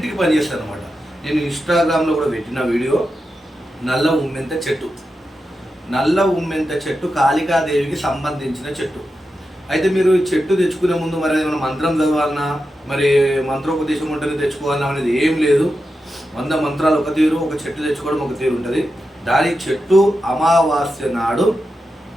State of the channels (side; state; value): both; normal; correlation 0.89